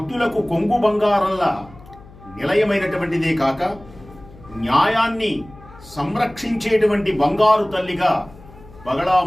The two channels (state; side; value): noise; left; hum, 21 dB below the sound